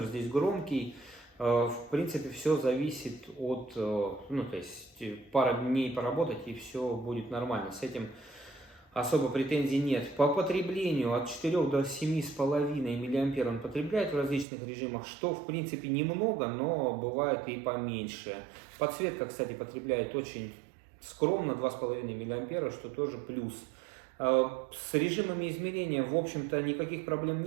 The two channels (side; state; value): left; drops out; at 14.5 s